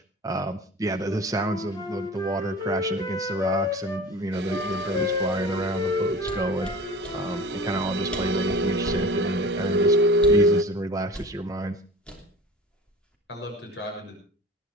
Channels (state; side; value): normal; both; correlation 0.38